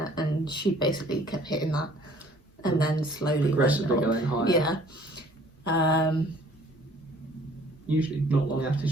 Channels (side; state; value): both; normal; correlation 0.55